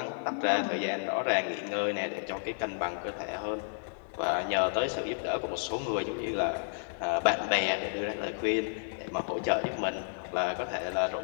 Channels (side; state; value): right; silent; 57 dB below the other